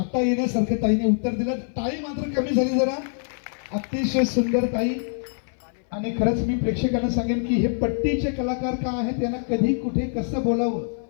येण्यासारखं ताईने उत्तर दिलं. टाळी मात्र कमी झाली जरा. अतिशय सुंदर ताई. आणि खरंच मी प्रेक्षकांना सांगेन की हे पट्टीचे कलाकार का आहेत त्यांना कधी कुठे कसं बोलावं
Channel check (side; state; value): right; silent; 57 dB below the other